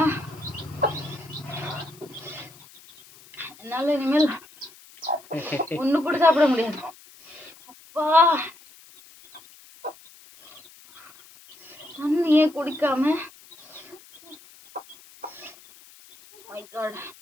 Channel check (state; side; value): noise; left; hiss, 23 dB below the sound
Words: என்னால இனிமேல் ஒண்ணு கூட சாப்பிட முடியாது. அப்பா தண்ணியே குடிக்காம மை காட்.